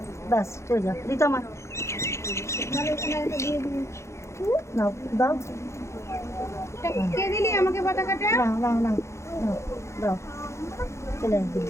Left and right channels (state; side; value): late; right; 0.14 ms